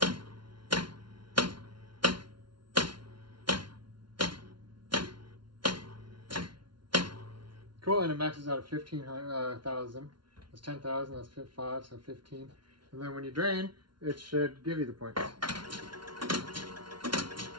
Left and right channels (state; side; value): late; left; 0.72 ms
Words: Cool, and it maxes out at 15,000. That's 10,000, that's 5, so 15. And then when you drain, it should give you the points.